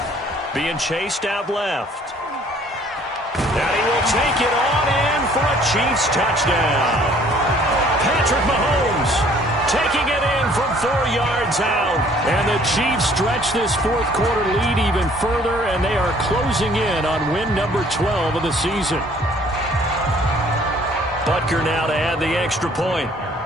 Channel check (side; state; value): both; normal; correlation 0.58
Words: Being chased out left. And he will take it on in for a Chiefs touchdown. Patrick Mahomes taking it in from 4 yards out. And the Chiefs stretch this 4th quarter lead even further, and they are closing in on win number 12 of the season. Butker now to add the extra point.